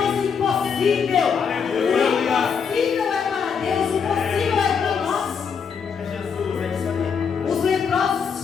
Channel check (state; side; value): quieter; right; 6.4 dB